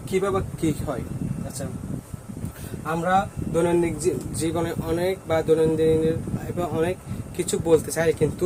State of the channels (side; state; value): both; identical; correlation 1.00